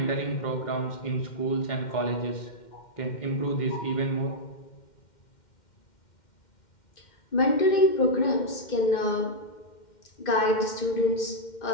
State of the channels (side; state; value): right; late; 2.1 ms